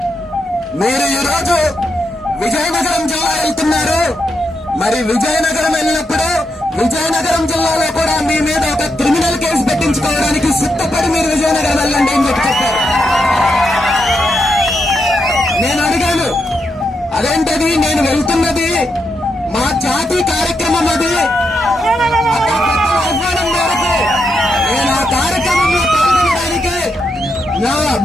మీరు ఈరోజు విజయనగరం జిల్లా వెళ్తున్నారు, మరి విజయనగరం వెళ్ళినప్పుడు విజయనగరం జిల్లాలో కూడా మీ మీద ఒక క్రిమినల్ కేసు పెట్టించుకోవడానికి సిద్ధపడి మీరు విజయనగరం వెళ్ళండి అని చెప్పారు. నేను అడిగాను, అదేంటది? నేను వెళ్తున్నది మా జాతి కార్యక్రమం, అది ఆహ్వానం మేరకు నేను ఆ కార్యక్రమంలో పాల్గొనడానికి నా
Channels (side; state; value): both; normal; correlation 0.83